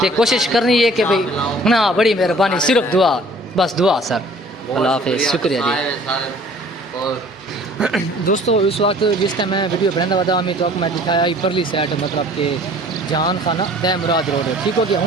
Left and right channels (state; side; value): normal; both; correlation 0.52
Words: تے کوشش کرنی ہے کہ بھئی نا بڑی مہربانی صرف دعا بس دعا سر اللہ حافظ شکریہ جی دوستو اس وقت جس ٹائم میں ویڈیو بنانا ودا ہمیں تو میں دکھایا پرلی سائڈ مطلب کہ جہان خانہ دہ مراد روڈ ہے ٹھیک ہو گیا